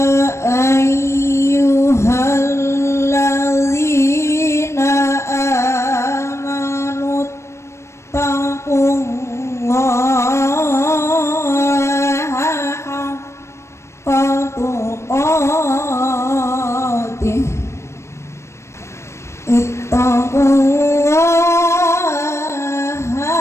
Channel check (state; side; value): late; right; 0.13 ms